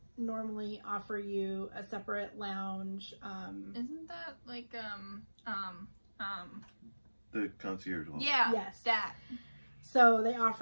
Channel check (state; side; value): inverted; both; correlation -1.00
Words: normally offer you a separate lounge. Isn't that like the concierge lounge? Yeah. Yes. That. So they